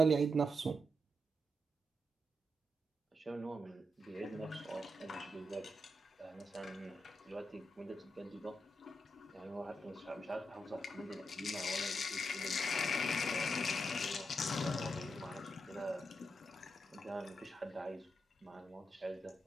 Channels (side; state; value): both; normal; correlation 0.84